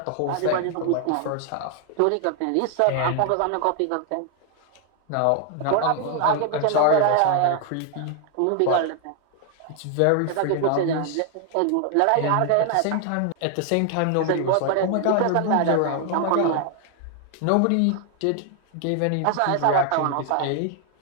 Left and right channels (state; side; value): different; both; correlation 0.00